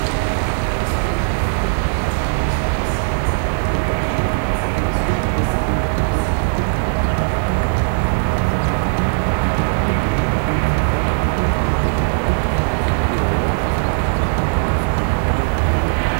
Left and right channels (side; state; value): left; silent; digital silence